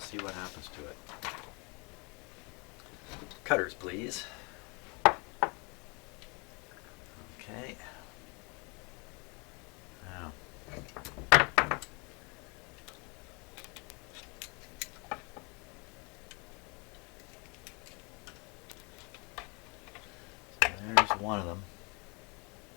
what happens to it. Cutters, please. Okay. Now, so there's one of them.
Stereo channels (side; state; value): right; quieter; 31.1 dB